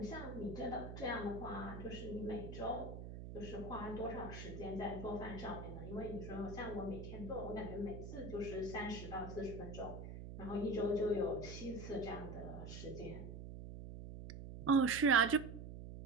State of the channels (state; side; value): noise; right; hum, 9 dB below the sound